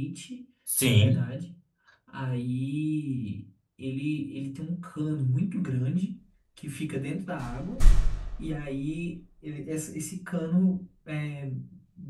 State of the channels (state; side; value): identical; both; correlation 1.00